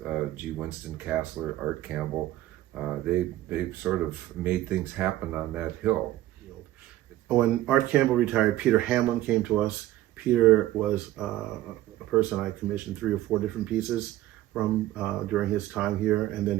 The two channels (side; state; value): left; quieter; 14.9 dB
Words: G. Winston Castler, Art Campbell. They sort of made things happen on that hill. When Art Campbell retired, Peter Hamlin came to us. Peter was a person I commissioned 3 or 4 different pieces from during his time here, and then